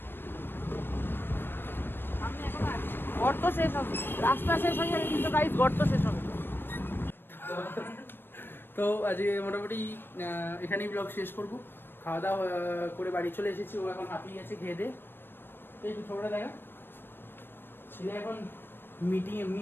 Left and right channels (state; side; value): late; right; 0.098 ms